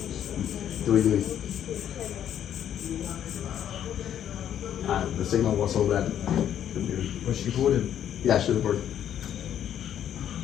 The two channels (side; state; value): right; quieter; 10.1 dB